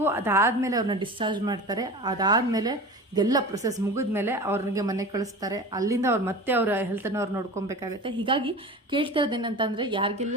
ಅದಾದಮೇಲೆ ಅವ್ರನ್ನ ಡಿಸ್ಚಾರ್ಜ್ ಮಾಡ್ತಾರೆ. ಅದಾದಮೇಲೆ ಇದೆಲ್ಲ ಪ್ರೊಸೆಸ್ ಮುಗಿದ್ಮೇಲೆ ಅವ್ರಿಗೆ ಮನೆಗೆ ಕಳಿಸ್ತಾರೆ. ಅಲ್ಲಿಂದ ಅವ್ರು ಮತ್ತೆ ಅವರ ಹೆಲ್ತನ್ನು ಅವ್ರು ನೋಡ್ಕೊಬೇಕಾಗತ್ತೆ. ಹೀಗಾಗಿ ಕೇಳ್ತಾ ಇರೋದೇನಂತಂದರೆ,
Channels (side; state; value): both; normal; correlation 0.34